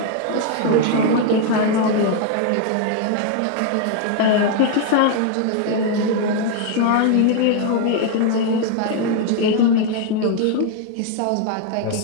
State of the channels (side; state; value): both; different; correlation 0.00